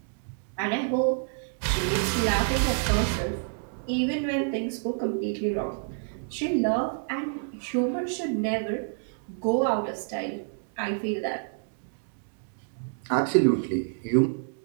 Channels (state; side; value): silent; left; digital silence